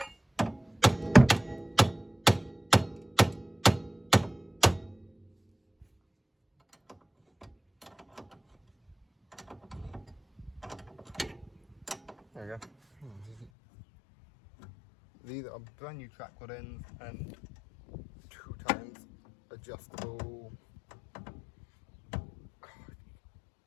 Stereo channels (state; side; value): drops out; right; at 13.5 s